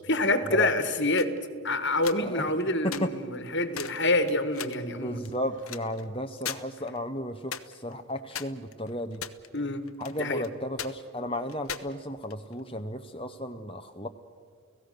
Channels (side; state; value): both; normal; correlation 0.04